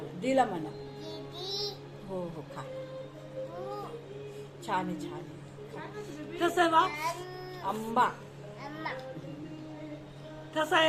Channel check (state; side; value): identical; both; correlation 1.00